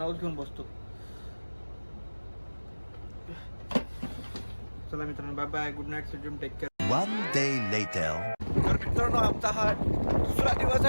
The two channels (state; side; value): inverted; both; correlation -1.00